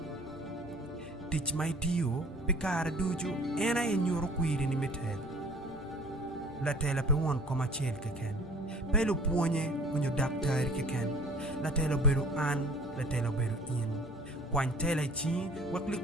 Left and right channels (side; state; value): both; normal; correlation 0.48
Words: tich mai tiyo pe kare dujo ena e nyoro kwiri ni metel la tela pe won koma chel keken pe lo puonye unyo daktari keken la tela beru an la tela beru in kwan tela chi wakli